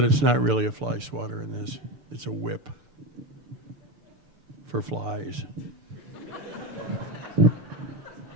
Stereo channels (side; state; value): left; late; 6.8 ms